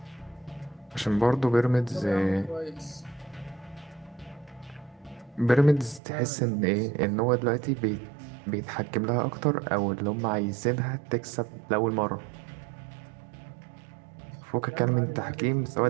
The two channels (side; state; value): left; drops out; at 6.0 s